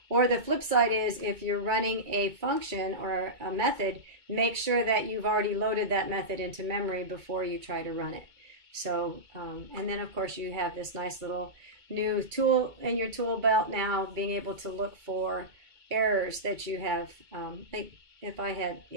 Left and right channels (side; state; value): left; late; 2.2 ms